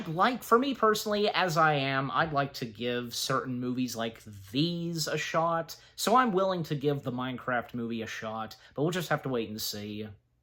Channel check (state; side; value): identical; both; correlation 1.00